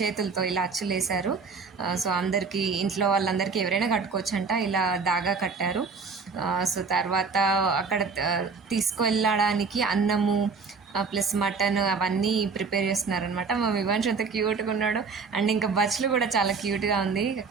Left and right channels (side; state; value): left; quieter; 4.9 dB